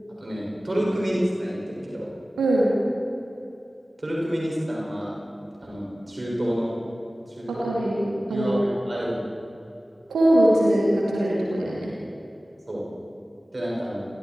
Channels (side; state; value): both; normal; correlation 0.97